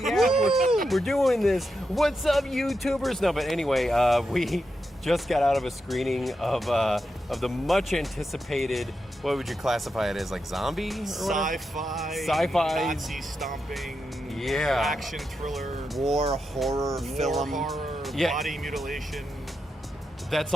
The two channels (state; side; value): normal; both; correlation 0.86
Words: we're doing this. What's up, YouTubers? No, but anyway, we just got out of a screening of the much anticipated. What would you classify it as? Like zombie? Or Sci-fi. Nazi stomping. Yeah. Action thriller. War horror film. Yeah. Body mutilation. That's